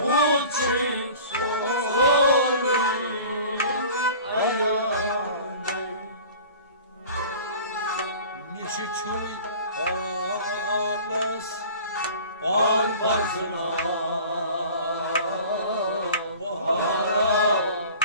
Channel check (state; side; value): inverted; both; correlation -0.43